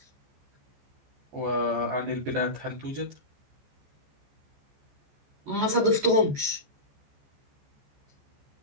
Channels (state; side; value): late; left; 14 ms